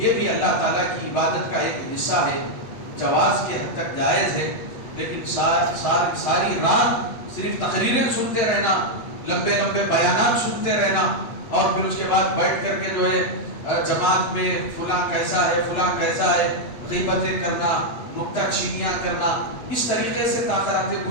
بھی اللہ تعالیٰ کی عبادت کا ایک حصہ ہے، جواز کے حد تک جائز ہے. لیکن ساری رات صرف تقریریں سنتے رہنا، لمبے لمبے بیانات سنتے رہنا، اور پھر اس کے بعد بیٹھ کر کے جو ہے جماعت میں فلاں کیسا ہے فلاں کیسا ہے، غیبتیں کرنا، نکتہ چینیاں کرنا، اس طریقے سے تاخراتیں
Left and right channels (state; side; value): late; right; 8.2 ms